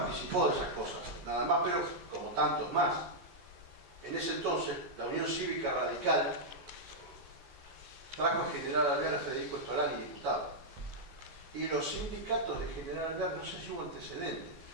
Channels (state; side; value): late; left; 14 ms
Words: de esas cosas, nada más, pero como tantos más. En ese entonces, la Unión Cívica Radical trajo a General Alvear a Federico Estolani, diputado. Y los sindicatos de General Alvear, no sé si hubo antecedentes,